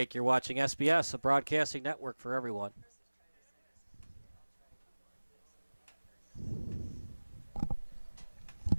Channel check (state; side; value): inverted; both; correlation -1.00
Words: You're watching SBS, a broadcasting network for everyone.